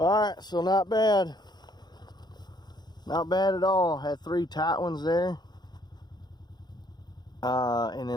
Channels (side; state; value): right; late; 0.20 ms